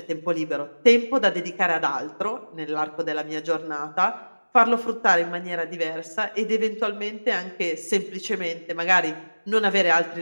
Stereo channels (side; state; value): both; inverted; correlation -1.00